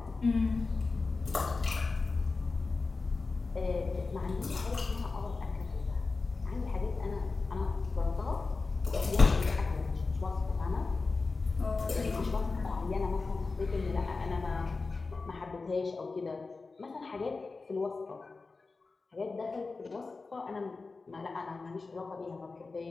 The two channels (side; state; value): right; quieter; 4.0 dB